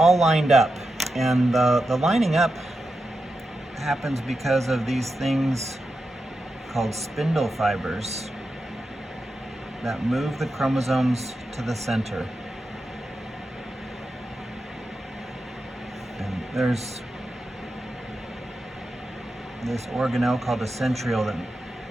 lined up. And the lining up happens because of these things called spindle fibers that move the chromosomes to the center. And there's this organelle called a centriole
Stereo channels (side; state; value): both; normal; correlation 0.89